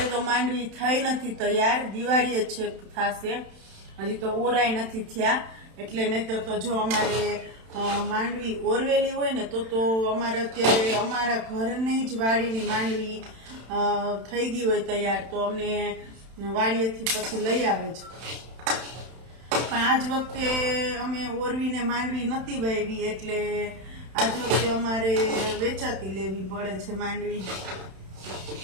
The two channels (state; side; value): late; left; 31 ms